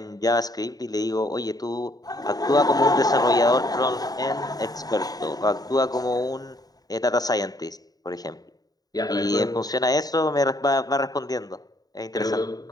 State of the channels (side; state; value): right; late; 0.18 ms